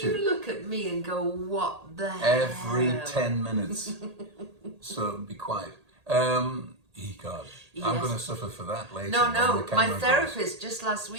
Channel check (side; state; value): left; late; 1.8 ms